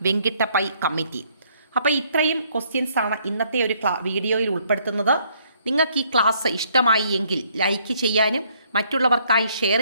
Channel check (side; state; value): both; inverted; correlation -0.67